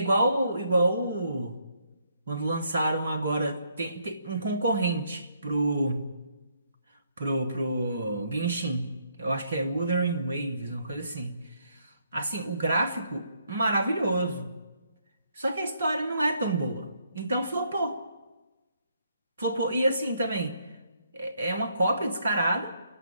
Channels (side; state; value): both; inverted; correlation -0.72